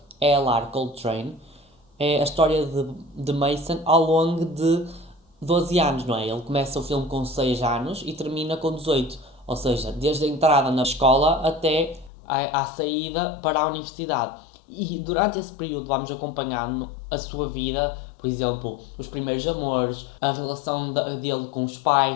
L.R. Coltrane. É a história de Mason ao longo de 12 anos, não é? Ele começa o filme com 6 anos e termina com 18. Ou seja, desde a entrada na escola até à saída para a universidade. E durante esse período vamos acompanhando a sua vida por exemplo, os primeiros amores, a relação dele com os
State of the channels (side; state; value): right; drops out; at 12.1 s